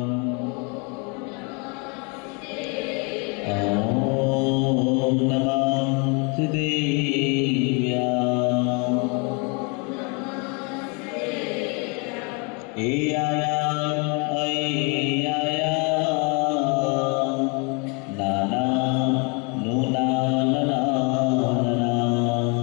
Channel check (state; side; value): quieter; right; 33.1 dB